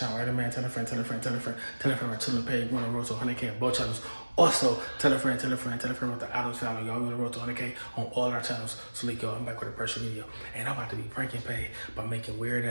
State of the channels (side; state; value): both; inverted; correlation -1.00